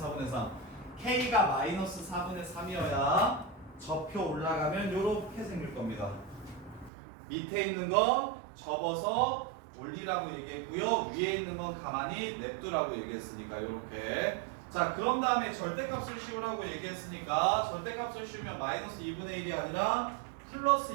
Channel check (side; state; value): left; drops out; at 6.9 s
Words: 4분의 3 k가 마이너스 4분의 3이어야 접혀 올라가면 요렇게 생길 겁니다. 밑에 있는 건 접어서 올리라고 얘기했고요. 위에 있는 건 가만히 냅두라고 얘기했으니까 요렇게. 자, 그런 다음에 절대값을 씌우라고 얘기했으니까 절대값을 씌우면 마이너스 2분의 1이 아니라 플러스